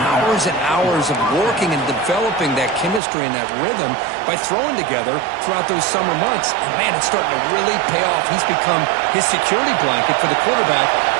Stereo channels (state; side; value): drops out; left; at 3.0 s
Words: and hours of working and developing that chemistry and that rhythm by throwing together throughout those summer months. And, man, it's starting to really pay off. He's become his security blanket for the quarterback,